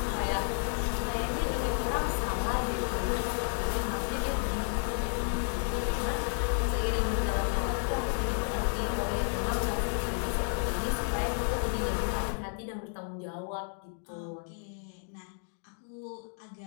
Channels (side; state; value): right; silent; 57 dB below the other